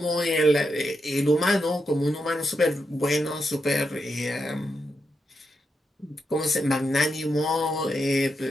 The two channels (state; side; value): normal; both; correlation 0.85